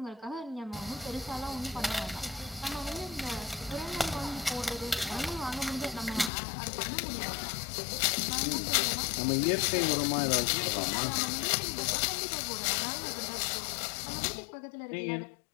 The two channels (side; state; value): right; drops out; at 6.3 s